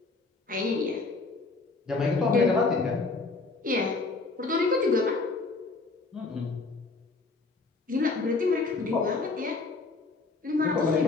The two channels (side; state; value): right; quieter; 3.8 dB